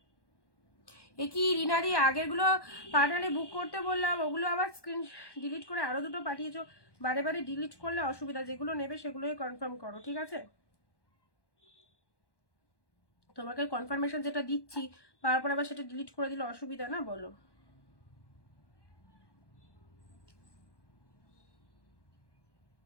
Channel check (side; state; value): right; late; 1.1 ms